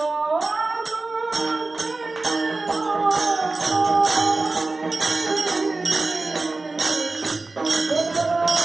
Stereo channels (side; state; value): left; quieter; 3.4 dB